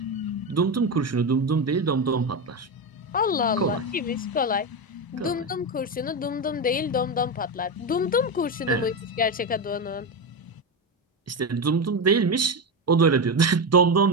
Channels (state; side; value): normal; both; correlation 0.14